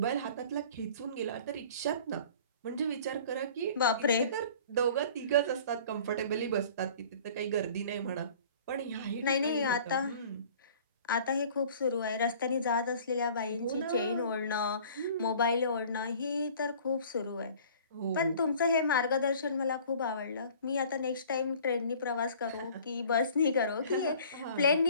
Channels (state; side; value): inverted; both; correlation -0.48